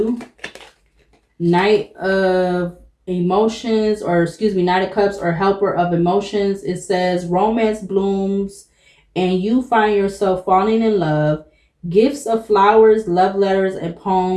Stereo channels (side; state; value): both; identical; correlation 1.00